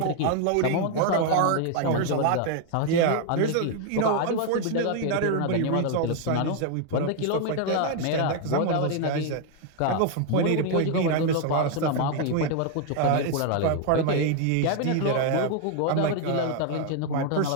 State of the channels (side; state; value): both; different; correlation 0.00